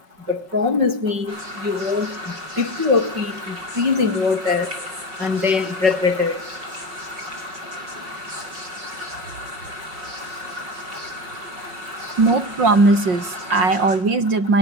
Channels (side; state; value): left; late; 5.4 ms